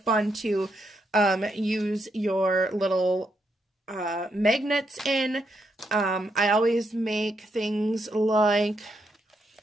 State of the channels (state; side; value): normal; both; correlation 0.79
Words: to use your little magnets in. I always make things like,